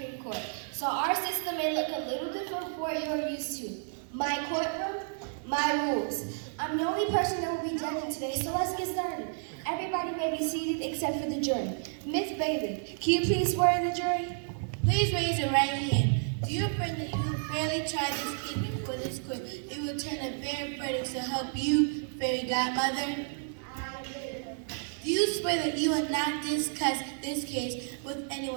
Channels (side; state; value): left; silent; digital silence